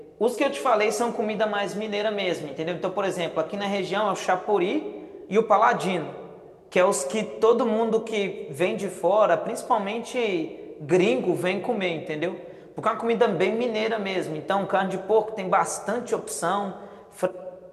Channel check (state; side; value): identical; both; correlation 1.00